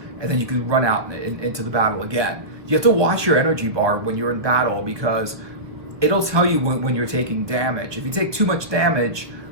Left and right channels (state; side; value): late; left; 1.1 ms